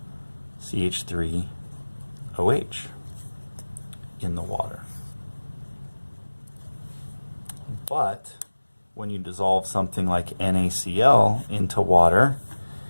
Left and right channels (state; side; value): inverted; both; correlation -1.00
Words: CH3OH in the water. But when you dissolve something like NaCl into water,